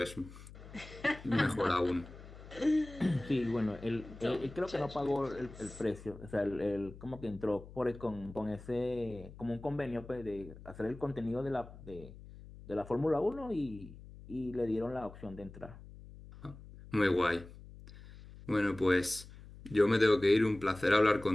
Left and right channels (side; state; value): left; noise; hum, 17 dB below the sound